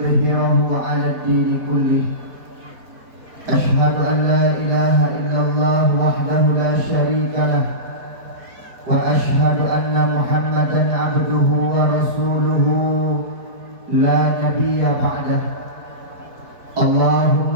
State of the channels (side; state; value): left; late; 4.5 ms